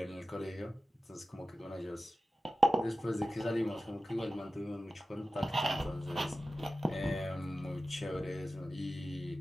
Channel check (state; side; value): normal; both; correlation 0.94